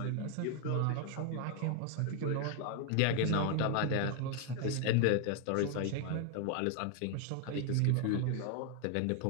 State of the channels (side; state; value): both; different; correlation 0.01